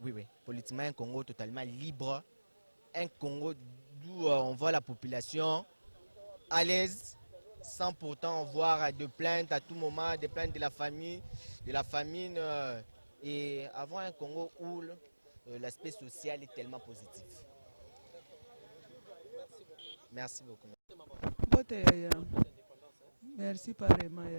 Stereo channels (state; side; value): inverted; both; correlation -1.00